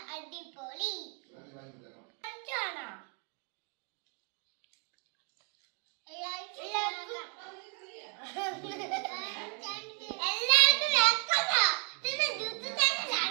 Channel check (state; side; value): quieter; left; 39.3 dB